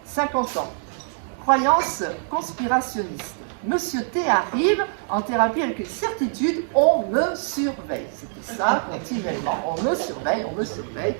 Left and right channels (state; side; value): silent; left; 63 dB below the other